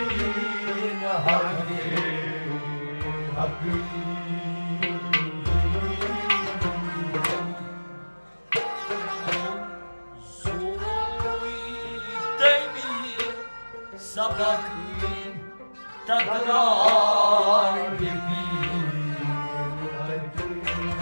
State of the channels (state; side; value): inverted; both; correlation -1.00